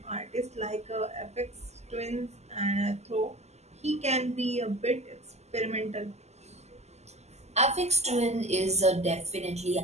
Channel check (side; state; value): left; late; 0.32 ms